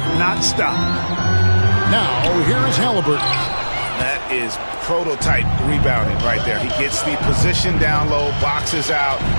not stopped. Now, here is Halliburton. That is prototype rebounding right there. He gets the position down low, boxes out,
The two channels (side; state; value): both; inverted; correlation -1.00